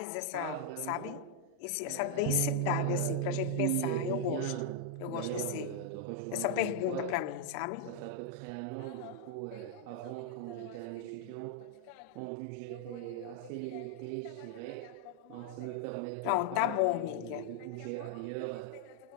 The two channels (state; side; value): different; both; correlation 0.00